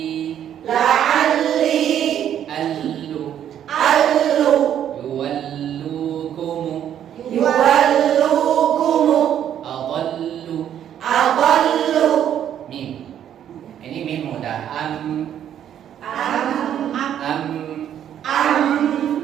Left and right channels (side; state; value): left; quieter; 10.0 dB